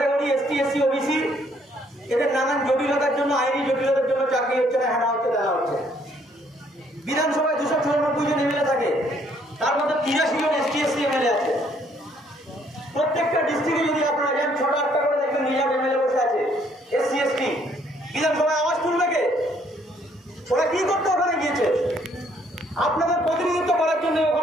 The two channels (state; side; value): normal; both; correlation 0.66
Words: ST SC OBC, এদের নানান জটিলতার জন্য, আইনি জটিলতার জন্য চাকরি হচ্ছে না, হেনা হচ্ছে, দেওয়া হচ্ছে। বিধানসভায় 294 জন এমএলএ থাকে, তার মধ্যে 83 জন এসটি এসসি এমএলএ আছে। প্রত্যেকটা ডিস্ট্রিক্টে যদি আপনারা যান, 6-8টা করে দেখবেন রিজার্ভ এমএলএ বসে আছে, এসসি এসটি। বিধানসভায় আওয়াজ তুলবে কে? ওরা কি করতে ওখানে গিয়েছে? আপনাদের প্রতিনিধিত্ব করার জন্য